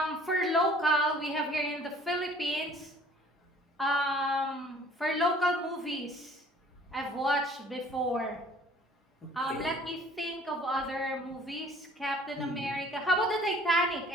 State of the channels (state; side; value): normal; both; correlation 0.53